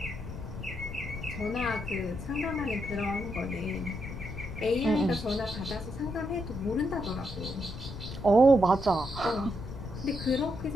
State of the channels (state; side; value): noise; left; rumble, 9 dB below the sound